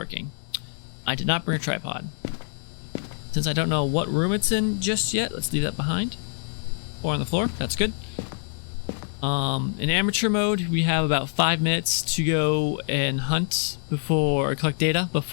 I did not bring a tripod. Since I don't know what room it's in just yet, let's leave that behind. Or on the floor, that's good. In amateur mode, we have about 5 minutes to go and hunt or collect data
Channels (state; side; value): silent; right; 61 dB below the other